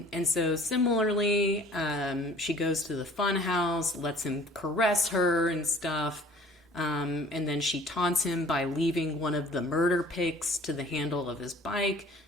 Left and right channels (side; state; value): both; normal; correlation 0.50